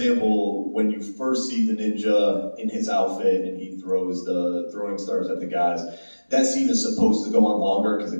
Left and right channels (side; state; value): both; inverted; correlation -1.00